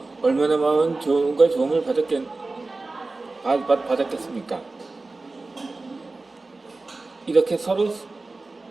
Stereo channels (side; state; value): left; quieter; 3.4 dB